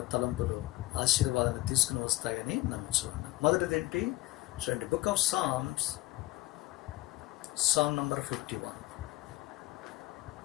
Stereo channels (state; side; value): quieter; right; 18.0 dB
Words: తలంపులు ఆశీర్వాదాన్ని తీసుకుని వస్తాయని నమ్ముచున్నాను. మొదటిదేంటి చూడండి, book of Psalms, Psalm number 51.